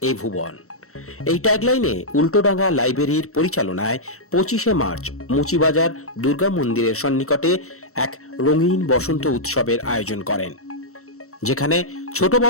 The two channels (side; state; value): right; late; 0.64 ms